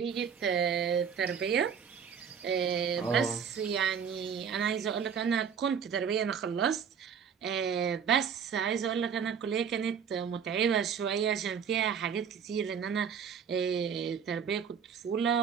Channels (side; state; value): left; quieter; 7.2 dB